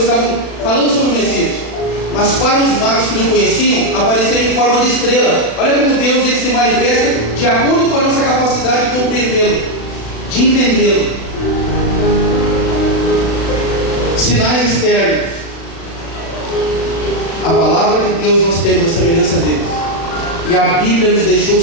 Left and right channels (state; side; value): late; right; 36 ms